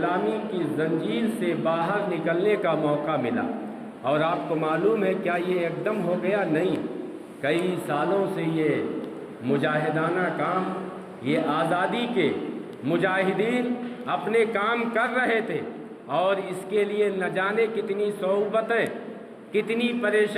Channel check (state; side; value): identical; both; correlation 1.00